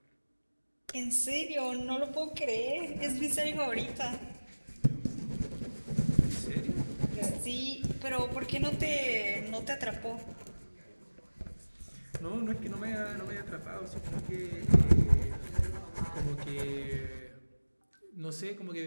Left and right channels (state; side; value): inverted; both; correlation -1.00